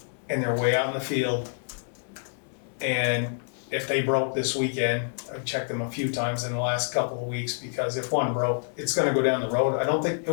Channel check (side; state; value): right; silent; digital silence